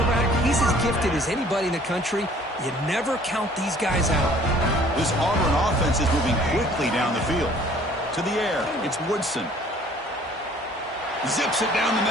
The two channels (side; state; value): both; normal; correlation 0.54